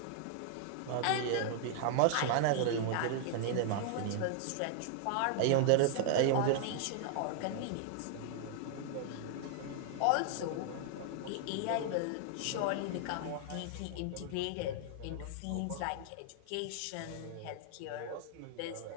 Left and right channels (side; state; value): both; different; correlation 0.00